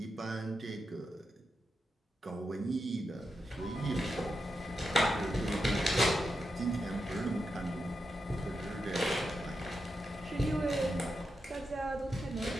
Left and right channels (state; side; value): normal; both; correlation 0.87